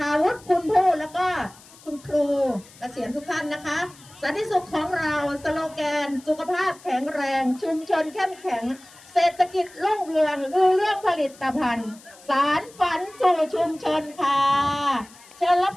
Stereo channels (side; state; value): left; noise; hiss, 23 dB below the sound